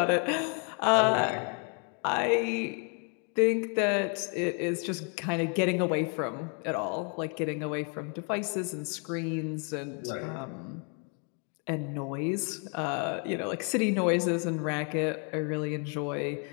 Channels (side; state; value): right; quieter; 38.0 dB